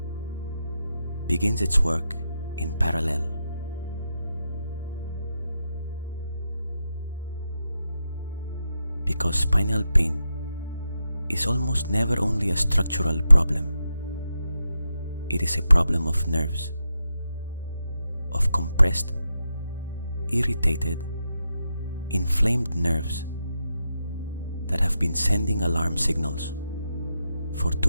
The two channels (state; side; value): inverted; both; correlation -0.86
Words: begins its work in parallel. Because spinal pain is almost never only a structural problem. It is a problem of nerves, of compressed, irritated, inflamed nerves that have been sending alarm signals for